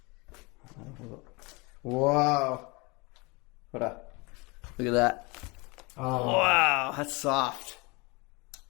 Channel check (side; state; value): right; quieter; 27.1 dB